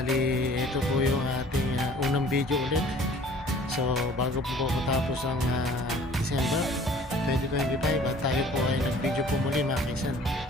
ito po yung ating unang video ulit. So bago po matapos ang December 2025 at tayo po ay nag-video po muli mga kaisan.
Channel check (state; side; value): normal; both; correlation 0.51